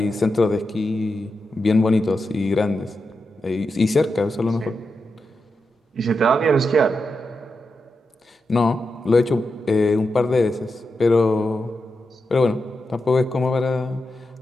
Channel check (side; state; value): both; normal; correlation 0.88